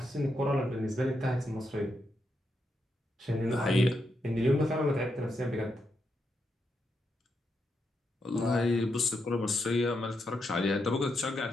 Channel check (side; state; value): both; normal; correlation 0.82